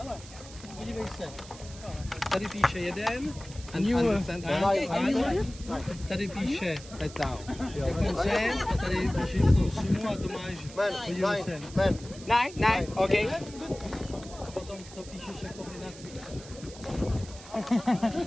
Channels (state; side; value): noise; right; hiss, 17 dB below the sound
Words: Podívej se. Tady píše 1. Tady píše sem, a tady píše tu sumu a to máš. Podívej se. 9, okay. A potom to píšeš jako kombinaci.